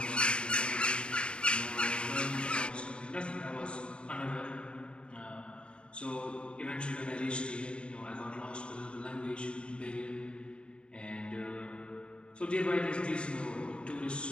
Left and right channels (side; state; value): right; late; 0.054 ms